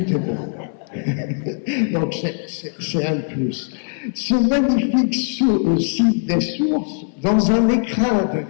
est beau. Donc c'est un plus. Ce magnifique site des sources, dans un écrin de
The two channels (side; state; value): right; silent; 58 dB below the other